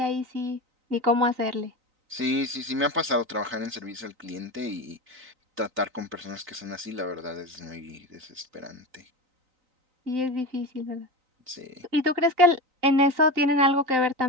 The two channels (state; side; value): late; left; 3.9 ms